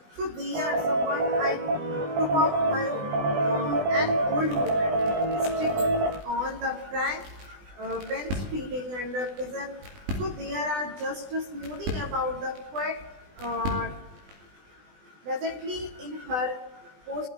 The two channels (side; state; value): left; late; 20 ms